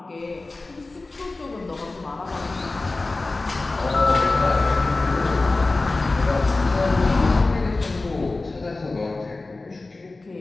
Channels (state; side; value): quieter; right; 3.3 dB